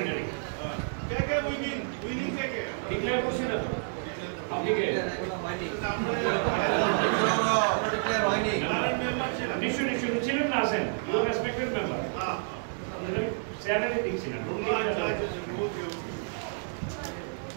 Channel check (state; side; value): silent; left; digital silence